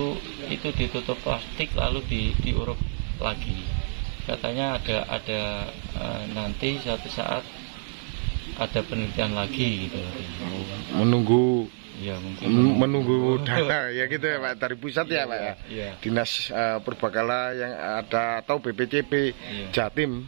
ditutup plastik lalu diuruk lagi. Katanya ada nanti suatu saat ada penelitian lagi gitu. Menunggu ya, mungkin menunggu dana ya gitu ya Pak, dari pusat ya Pak ya. Iya. Dinas Purbakala yang ada atau BPCP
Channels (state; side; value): silent; left; digital silence